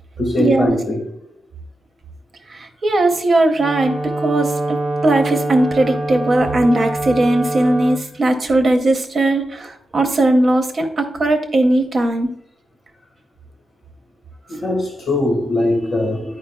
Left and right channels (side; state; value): both; normal; correlation 0.89